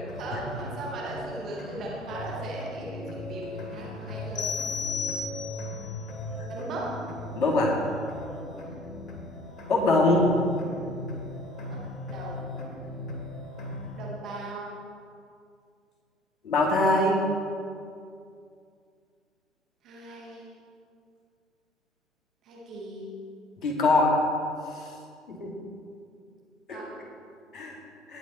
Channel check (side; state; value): both; normal; correlation 0.53